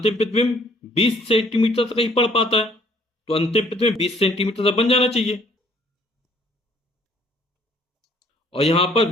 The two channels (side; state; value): both; normal; correlation 0.60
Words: प्रतिबिंब 20 सेंटीमीटर तक ही पढ़ पाता है, तो अंतिम प्रतिबिंब 20 सेंटीमीटर तक बन जाना चाहिए। और यहां पर